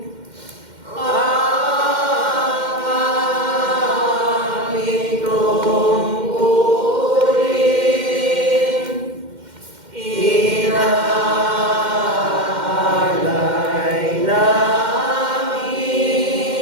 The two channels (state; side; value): late; left; 2.1 ms